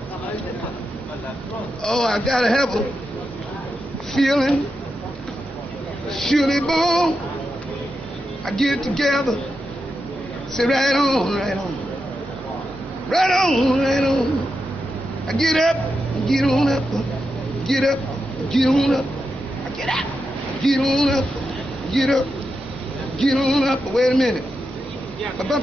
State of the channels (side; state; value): both; normal; correlation 0.87